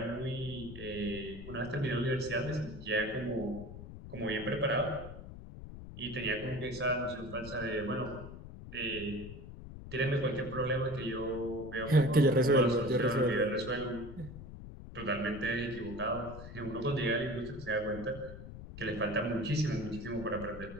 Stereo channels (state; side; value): noise; left; rumble, 12 dB below the sound